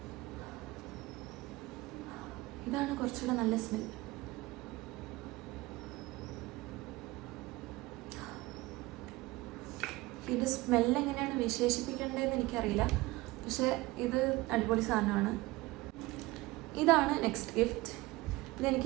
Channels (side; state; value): left; quieter; 20.3 dB